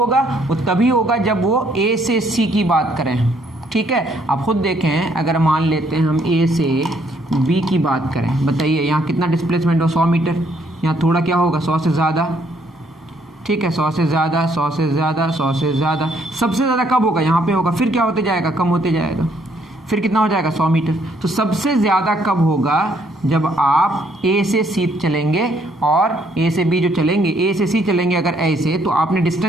वो तभी होगा जब वो ए से सी की बात करें, ठीक है। आप खुद देखें, अगर मान लेते हैं हम ए से बी की बात करें, बताइए यहाँ कितना डिस्प्लेसमेंट हो, 100 मीटर। यहाँ थोड़ा क्या होगा, 100 से ज़्यादा, ठीक है, 100 से ज़्यादा, 100 से ज़्यादा, 100 से ज़्यादा। सबसे ज़्यादा कब होगा, यहाँ पे होगा। फिर क्या होते जाएगा, कम होते जाएगा। फिर कितना हो जाएगा, 100 मीटर। तो सबसे ज़्यादा कब होगा, जब आप ए से सी चलेंगे और ए से बी जो चलेंगे, ए से सी चलेंगे अगर ऐसे, तो आपने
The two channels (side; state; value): both; normal; correlation 0.68